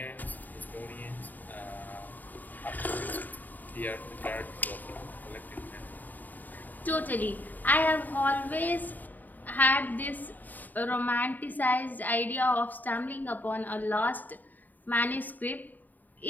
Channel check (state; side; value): late; right; 0.085 ms